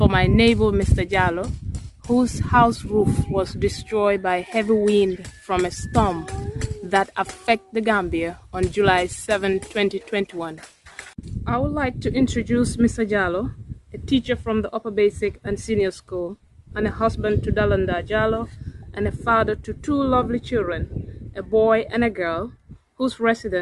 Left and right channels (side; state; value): both; identical; correlation 1.00